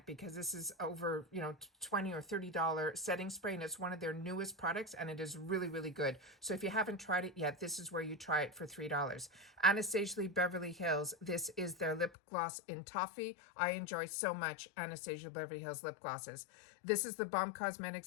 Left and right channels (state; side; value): drops out; right; at 12.1 s